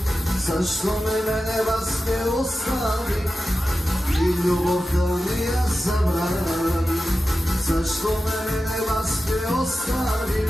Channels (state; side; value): normal; both; correlation 0.93